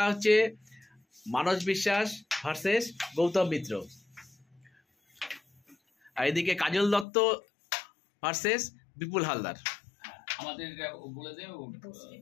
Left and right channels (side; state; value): right; drops out; at 7.1 s